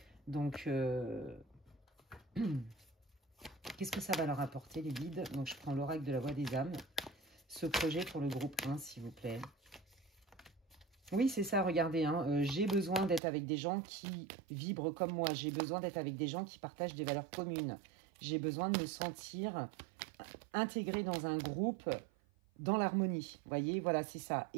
Donc, qu'est-ce que ça va leur apporter, les guides? Donc, je prends l'oracle de la voix des âmes. Ce projet pour le groupe 1, s'il vous plaît. Oui, c'est ça, regardez, hein, j'ai besoin d'être avec des gens qui vibrent comme moi. J'ai besoin d'être avec des gens qui partagent des valeurs communes. J'ai besoin de me sentir intégré dans un groupe, dans l'harmonie. Vous voyez, voilà, c'est ça.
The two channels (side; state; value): left; drops out; at 13.2 s